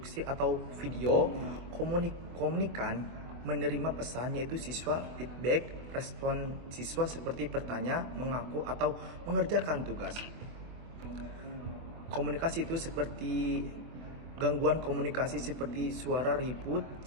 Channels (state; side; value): late; left; 24 ms